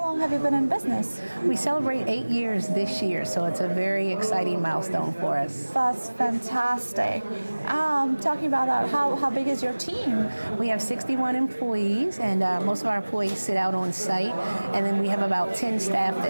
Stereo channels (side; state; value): both; inverted; correlation -1.00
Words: have you been in business? We celebrate 8 years this year, so it's a very exciting milestone for us. That's fantastic. Talking about that, how big is your team? We have 61 employees, and most of our employees sit out on site, and then we have about 10 staff